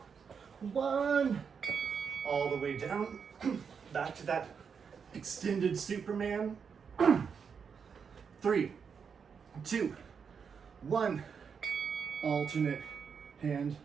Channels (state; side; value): quieter; left; 6.4 dB